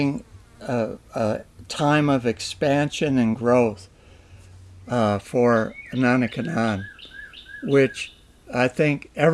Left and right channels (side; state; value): both; identical; correlation 1.00